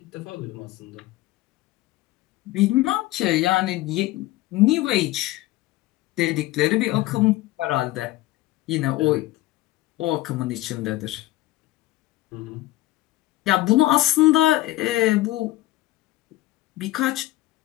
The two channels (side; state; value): right; quieter; 17.1 dB